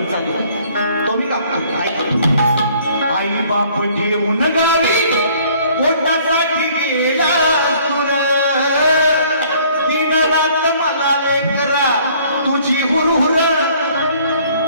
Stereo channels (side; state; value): both; inverted; correlation -0.58